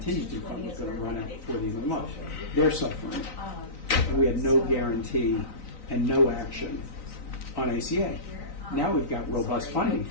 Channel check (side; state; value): right; late; 3.9 ms